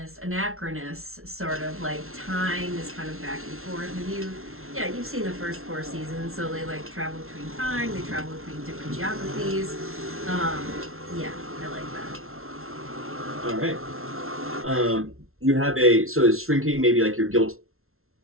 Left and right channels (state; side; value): late; left; 0.62 ms